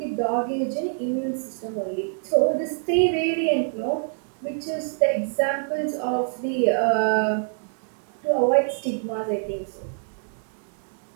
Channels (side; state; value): left; silent; digital silence